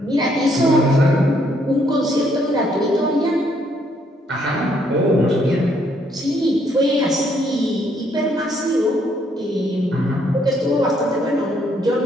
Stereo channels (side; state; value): both; normal; correlation 0.70